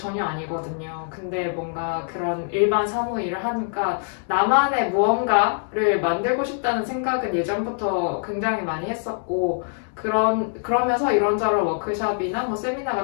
아니거든요. 근데 뭔가 그런 일반 사무 일을 하니까 나만의 무언가를 만들고 싶다는 생각은 예전부터 굉장히 많이 했었고 그러면서 이런저런 워크숍이나 뭐 세미나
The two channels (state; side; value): silent; right; 63 dB below the other